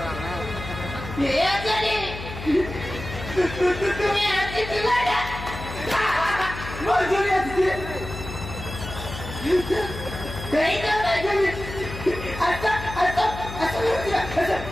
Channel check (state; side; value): noise; left; hum, 10 dB below the sound